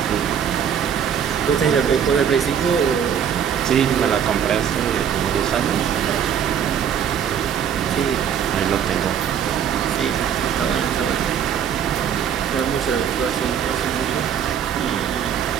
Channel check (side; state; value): left; quieter; 8.4 dB